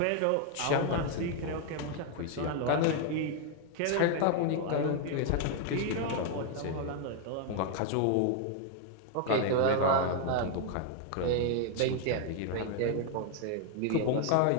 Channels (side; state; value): both; different; correlation 0.00